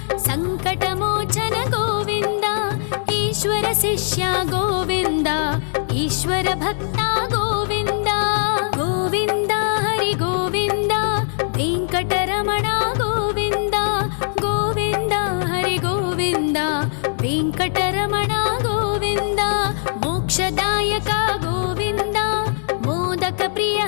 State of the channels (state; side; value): silent; right; digital silence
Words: సంకటమోచన గోవింద ఈశ్వర శిష్య గోవింద ఈశ్వర భక్త గోవింద గోవింద హరి గోవింద వెంకటరమణ గోవింద గోవింద హరి గోవింద వెంకటరమణ గోవింద మోక్షదాయక గోవింద మోదక ప్రియ